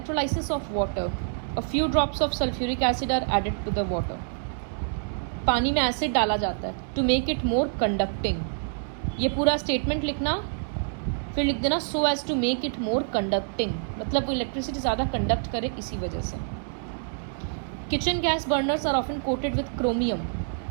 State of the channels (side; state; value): left; silent; digital silence